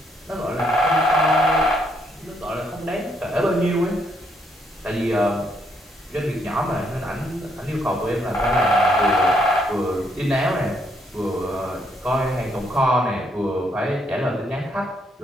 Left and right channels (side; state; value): both; normal; correlation 0.73